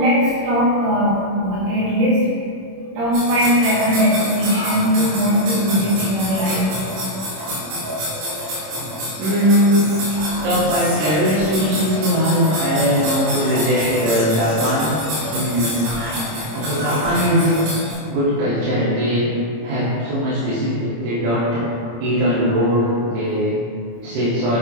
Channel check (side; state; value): left; late; 26 ms